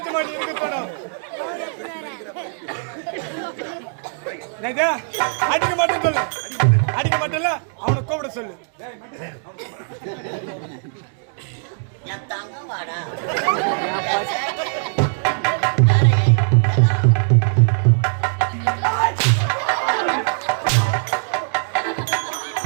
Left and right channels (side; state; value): left; silent; digital silence